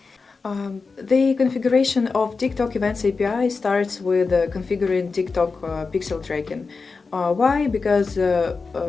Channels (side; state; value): right; quieter; 4.5 dB